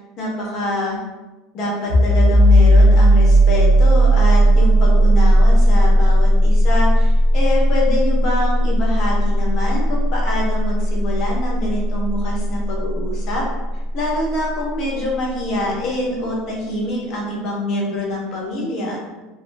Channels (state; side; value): normal; both; correlation 0.82